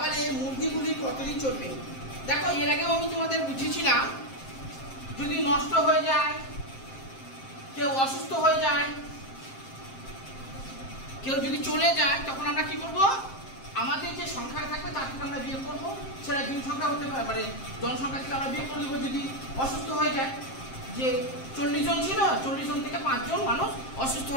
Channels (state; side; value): late; right; 7.6 ms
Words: মুরগিগুলি কতদিন চলবে? দেখো, এর আগেও আমি তোমাদের বুঝিয়েছিলাম, যদি নষ্ট হয়ে যায়, কেউ অসুস্থ হয়ে যায়, কেউ যদি চলে যায়, তখন আমরা কি করব? আমাদের যে সংখ্যা থাকবে তার থেকে আমরা বিয়োগ করবো। সেটা দিন সংখ্যা হতে পারে, মানে জনসংখ্যা থেকে আমরা বিয়োগ করে দেবো। যদি অসুস্থ হয়ে যায়, যে 40 জন ছিল, 40 জন থেকে 5 জন মানুষ অসুস্থ